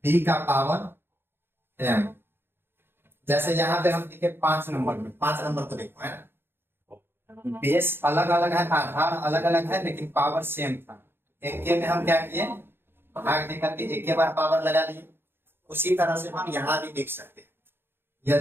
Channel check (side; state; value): left; late; 0.11 ms